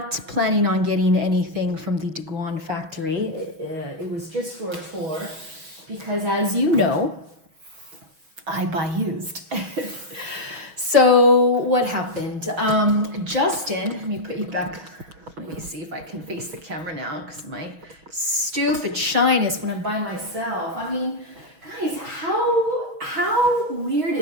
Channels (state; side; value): late; left; 6.2 ms